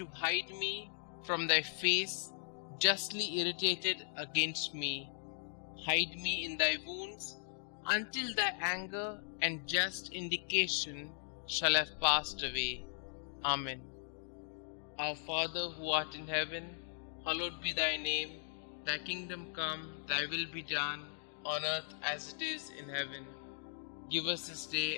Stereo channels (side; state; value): right; silent; digital silence